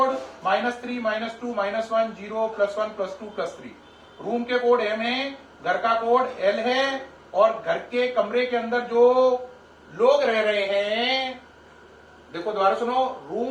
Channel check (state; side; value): identical; both; correlation 1.00